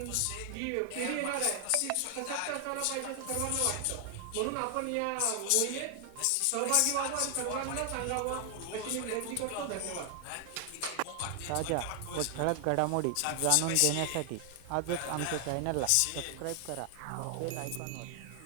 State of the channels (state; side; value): different; both; correlation 0.00